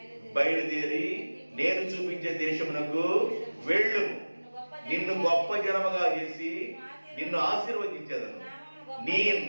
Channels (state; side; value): inverted; both; correlation -1.00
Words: బయలుదేరి నేను చూపించే దేశమునకు వెళ్ళు. నిన్ను గొప్ప జనముగా చేసి నిన్ను ఆశీర్వదించేదను, నీ